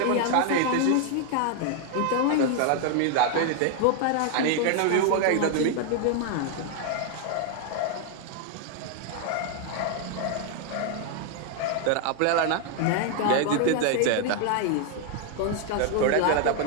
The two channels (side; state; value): both; different; correlation 0.00